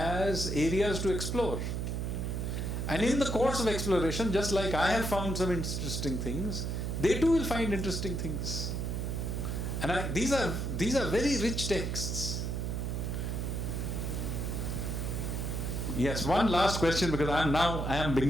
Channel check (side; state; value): right; noise; hum, 2 dB below the sound